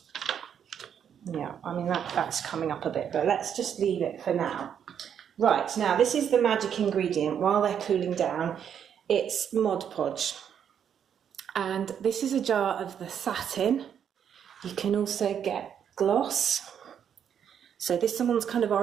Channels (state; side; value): quieter; left; 8.5 dB